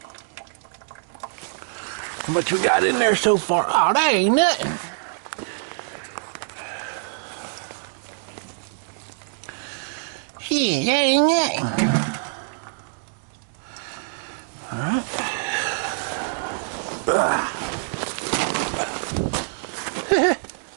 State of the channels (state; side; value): silent; left; digital silence